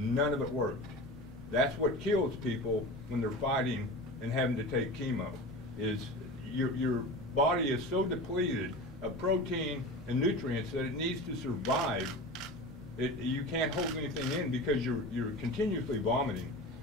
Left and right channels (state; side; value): normal; both; correlation 0.32